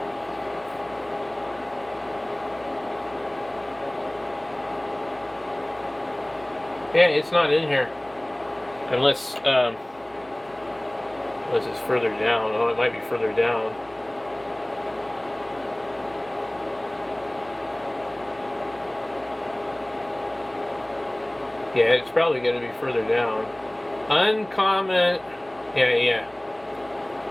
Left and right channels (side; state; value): right; noise; hum, 26 dB below the sound